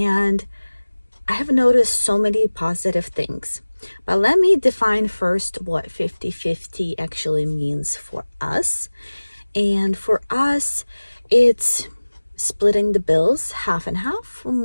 I have noticed so many positive things. But let me define first what 50-50 actually means for us. And for us, it's splitting the bills half and half,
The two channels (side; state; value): both; inverted; correlation -1.00